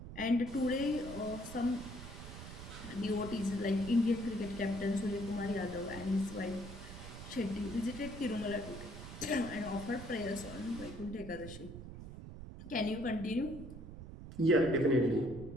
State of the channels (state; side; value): noise; right; rumble, 11 dB below the sound